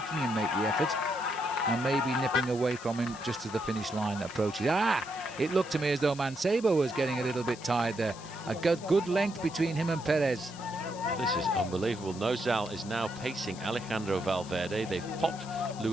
him make the effort, and maybe nipping away from him just as the finish line approaches. It looked to me as though Mancebo was getting a little bit tired there. A good length between him and Perez. This is unbelievable. Nozal is now pacing Alejandro Valverde. They've popped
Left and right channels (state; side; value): noise; left; hiss, 17 dB below the sound